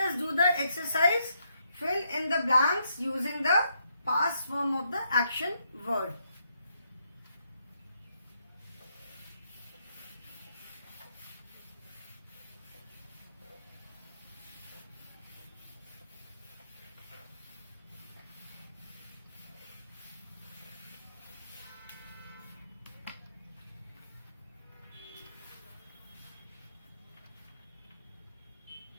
do the exercise fill in the blanks using the past form of the action word.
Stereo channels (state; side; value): inverted; both; correlation -0.77